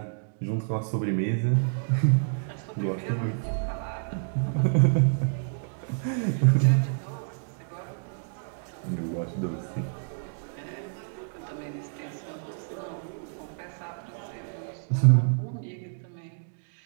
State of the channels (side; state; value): left; silent; digital silence